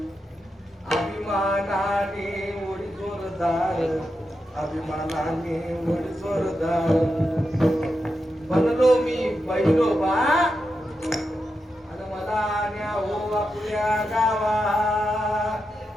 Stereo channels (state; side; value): normal; both; correlation 0.87